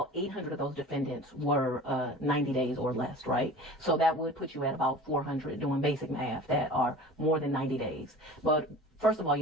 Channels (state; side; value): normal; both; correlation 0.40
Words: 800 of those defendants were 90 days or less, right? So that would put you at about 400 doing basic math that are more than 90 days. But first of all, you